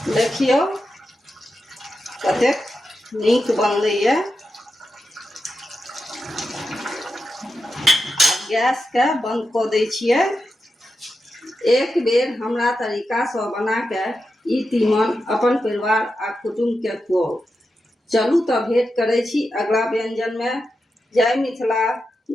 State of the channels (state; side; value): normal; both; correlation 0.89